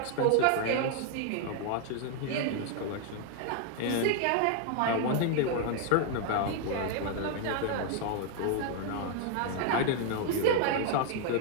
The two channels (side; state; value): both; different; correlation 0.00